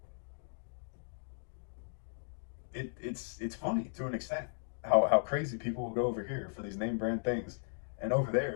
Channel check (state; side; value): silent; right; digital silence